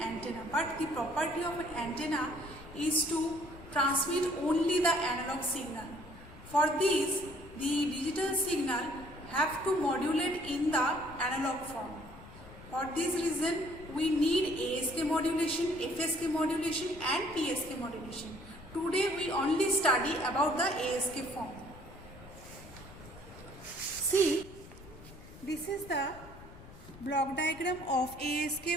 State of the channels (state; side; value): noise; left; rumble, 18 dB below the sound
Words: But the property of an antenna is to transmit only the analog signal. For this, the digital signal have to modulate in the analog form. For this reason, we need ASK modulation, FSK modulation and PSK modulation. Today we only study about the ASK form. See, this is the block diagram of ASK